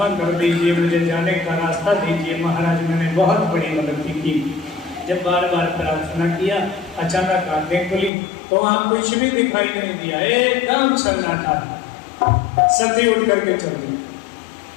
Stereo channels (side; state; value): right; drops out; at 8.1 s